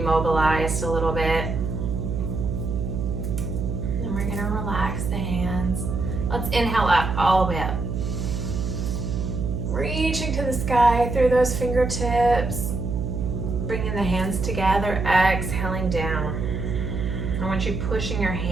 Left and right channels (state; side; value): noise; right; hum, 3 dB below the sound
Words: a little bit. And we're going to relax the hands. Let's inhale up, all the way up. Reaching to the sky through those fingertips. Bringing the hands together, exhaling down. I want you pushing your